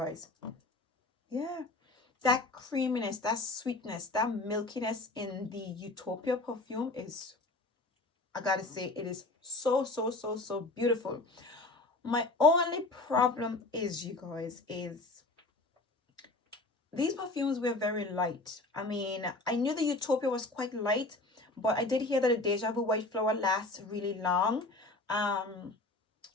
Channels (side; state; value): right; quieter; 3.0 dB